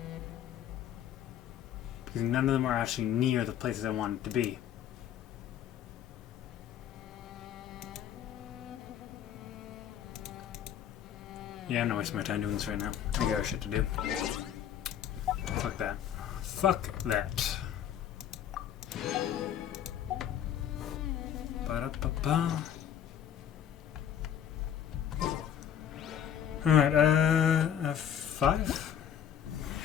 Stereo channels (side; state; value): right; quieter; 9.6 dB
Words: Because none of them are actually near the places I want it to be. Yeah, I'm not wasting my time doing this right now. I got shit to do. Fuck that. Fuck that. Ba-da-ba-ba. Alright, a 5?